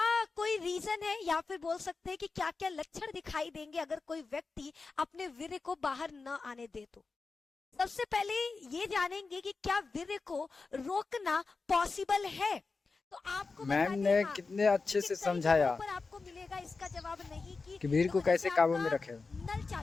कोई रीजन है, या फिर बोल सकते हैं कि क्या क्या लक्षण दिखाई देंगे अगर कोई व्यक्ति अपने वीर्य को बाहर न आने दे तो। सबसे पहले ये जानेंगे कि क्या वीर्य को रोकना पॉसिबल है। तो आपको बता मैम दें, ने हाँ, कितने अच्छे से कई जगहों समझाया पर आपको मिलेगा इसका जवाब नहीं कि वीर को देखो, कैसे जैसे काबू में आपका रखे। नल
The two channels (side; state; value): right; quieter; 4.2 dB